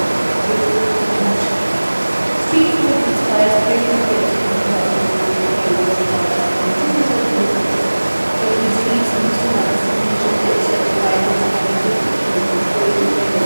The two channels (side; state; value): both; inverted; correlation -1.00